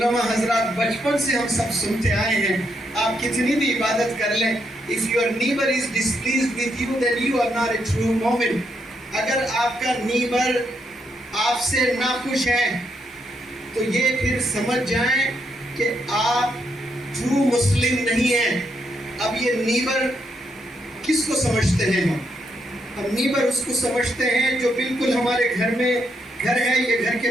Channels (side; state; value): both; normal; correlation 0.78